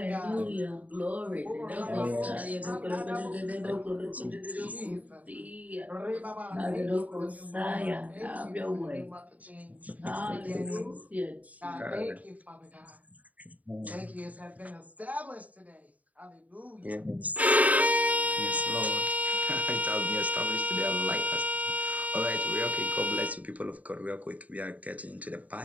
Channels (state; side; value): late; left; 0.072 ms